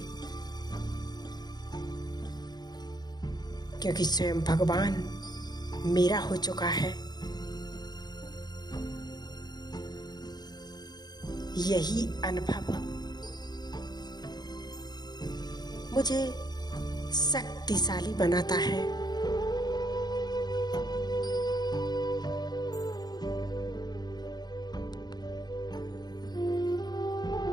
क्योंकि स्वयं भगवान मेरा हो चुका है। यही अनुभव मुझे शक्तिशाली बनाता है।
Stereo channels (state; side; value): late; right; 0.20 ms